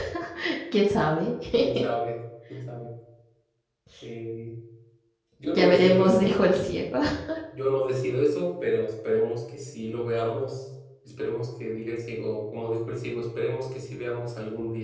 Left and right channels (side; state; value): both; identical; correlation 1.00